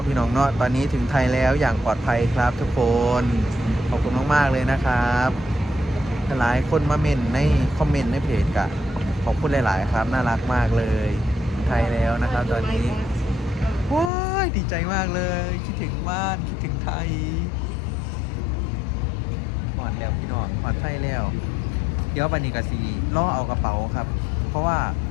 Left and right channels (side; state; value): right; drops out; at 14.1 s